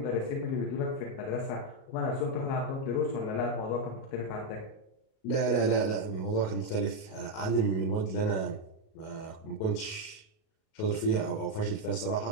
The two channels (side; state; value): right; late; 37 ms